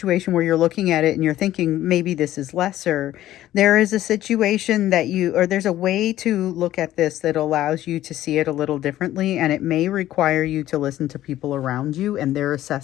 where you're looking at it and you're thinking maybe this is lesser. There is a situation there's a way to look at this that allows you to see it a little differently, and it may require you to listen to people around you and their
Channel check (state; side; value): quieter; right; 13.7 dB